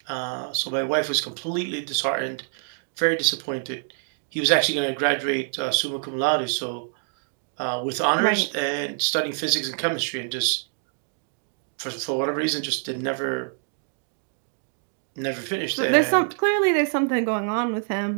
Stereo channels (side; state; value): left; silent; 58 dB below the other